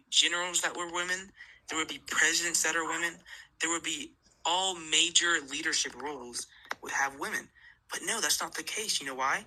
generals that were women, there would be presidents that are women, there would be all major leadership roles would have women. But no, that's not the case. You know why?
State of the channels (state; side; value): identical; both; correlation 1.00